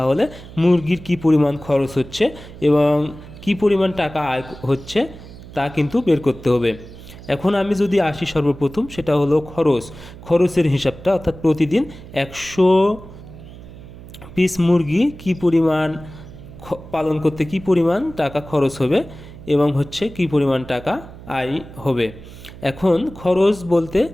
মুরগির কি পরিমাণ খরচ হচ্ছে এবং কি পরিমাণ টাকা আয় হচ্ছে তা কিন্তু বের করতে হবে। এখন আমি যদি আসি সর্বপ্রথম, সেটা হলো খরচের হিসাবটা, অর্থাৎ প্রতিদিন 100 পিস মুরগি কি পরিমাণ পালন করতে কি পরিমাণ টাকা খরচ হবে এবং কি পরিমাণ টাকা আয় হবে। এখন খরচ বলতে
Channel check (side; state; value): right; noise; hum, 17 dB below the sound